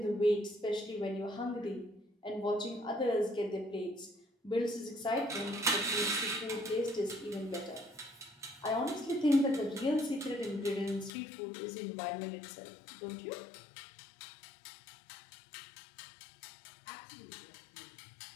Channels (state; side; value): drops out; right; at 11.1 s